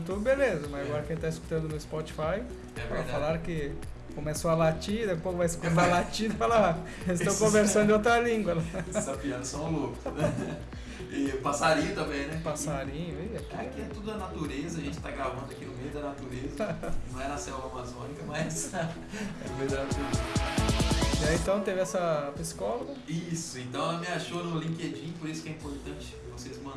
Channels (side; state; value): both; identical; correlation 1.00